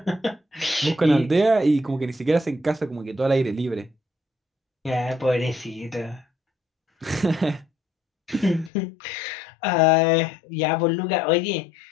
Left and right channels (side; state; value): right; drops out; at 8.7 s